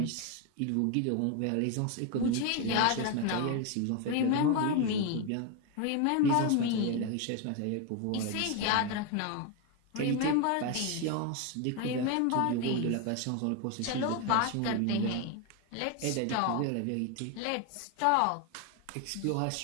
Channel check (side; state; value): both; different; correlation 0.01